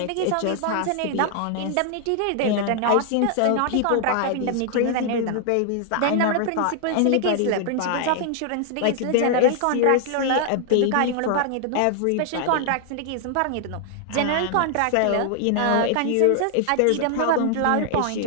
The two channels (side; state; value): both; different; correlation 0.00